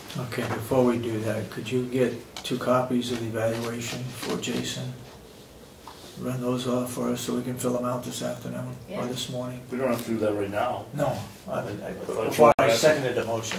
Okay, before we do that, could you get 2 copies of the evaluation for Jason? Run those off for us so we can fill them out this afternoon or Yeah. this morning? We don't have to do that right now. No, thought before you I were seconded the motion.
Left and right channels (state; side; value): identical; both; correlation 1.00